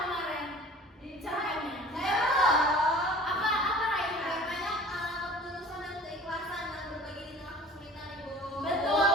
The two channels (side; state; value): both; normal; correlation 0.45